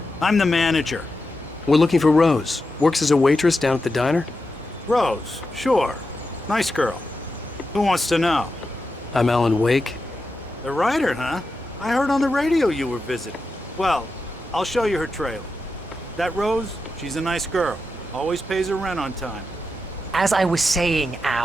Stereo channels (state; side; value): normal; both; correlation 0.89